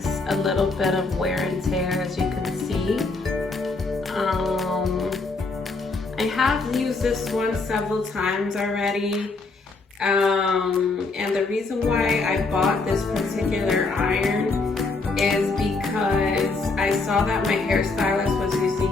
a little bit of wear and tear, as you can see. I have used this one several times already. And the reason why I bought this particular iron is because I saw that my hairstylist was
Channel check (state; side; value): quieter; right; 3.8 dB